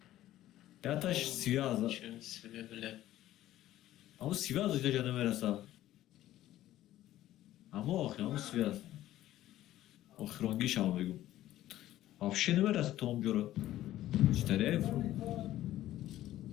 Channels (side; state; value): right; quieter; 14.0 dB